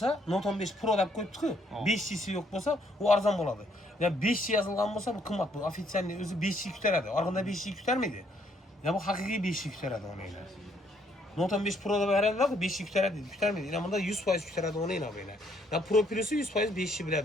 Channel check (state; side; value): normal; both; correlation 0.69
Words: Note 15 Pro deb qo'yibdi-ku, 5'lisi yo'q bo'lsa, u arzon bo'ladi. Ya 5 yozilgan bo'lsa, bu qimmat bu. Ofitsialni o'zi 5 ko'taradi. Orqada 5 ko'tarmaydi. Ya bu haqiqiy 5 ko'taradi o'yinglar. Note 15 Pro deb beradilar, 5 ko'tarmaydi. Yana bunda 100% ko'taradi o'yinglar o'yinglar. Ya Pro Plus'i 100% 5